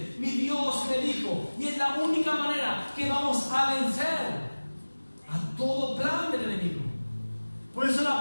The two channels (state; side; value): inverted; both; correlation -1.00